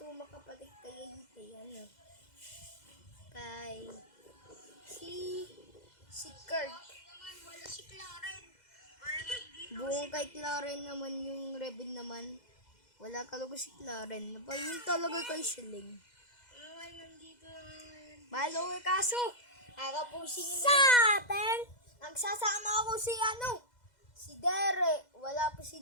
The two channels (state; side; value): late; right; 2.0 ms